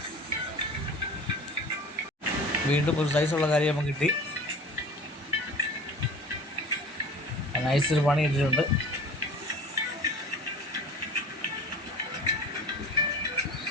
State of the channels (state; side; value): normal; both; correlation 0.41